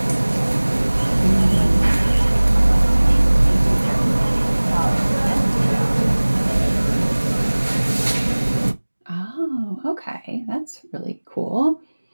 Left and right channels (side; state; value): both; inverted; correlation -1.00